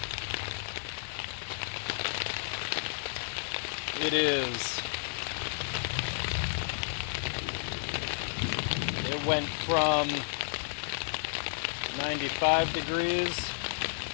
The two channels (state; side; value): silent; right; digital silence